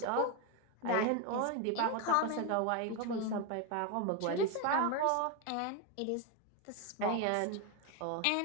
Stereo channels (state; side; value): different; both; correlation 0.01